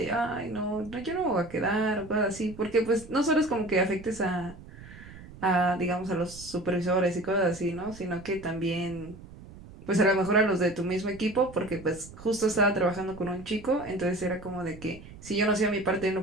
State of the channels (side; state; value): right; noise; rumble, 17 dB below the sound